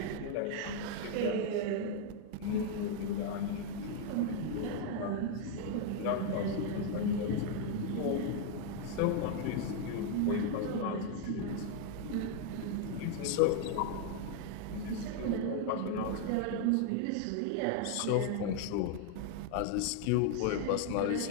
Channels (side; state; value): both; different; correlation 0.00